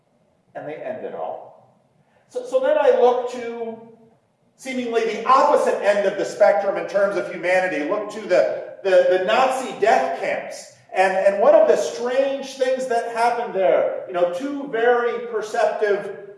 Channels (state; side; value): identical; both; correlation 1.00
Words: and they end it all. So then I look to seemingly the opposite end of the spectrum in terms of humanity. Look to the Nazi death camps. And one of the strange things that happened there, two very perceptive